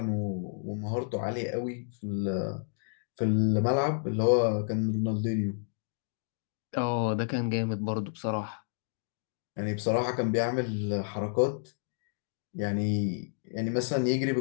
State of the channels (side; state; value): right; silent; digital silence